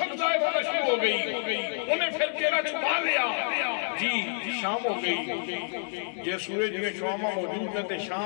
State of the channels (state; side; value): silent; right; 59 dB below the other